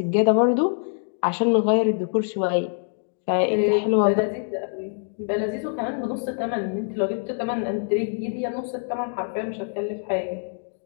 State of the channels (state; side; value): silent; right; 62 dB below the other